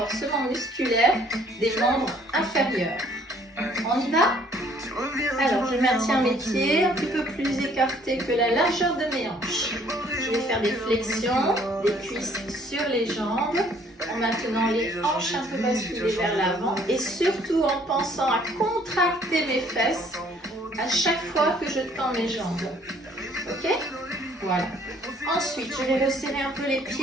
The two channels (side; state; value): both; normal; correlation 0.60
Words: musculaire des membres inférieurs. On y va? Alors je maintiens mes pieds un petit peu plus écartés que la largeur de mes hanches. Je vais faire des flexions, des cuisses sur les jambes, en maintenant les hanches un peu basculées vers l'avant et surtout en pensant à contracter mes fesses à chaque fois que je tends mes jambes. Ok? Voilà. Ensuite, je vais resserrer un peu les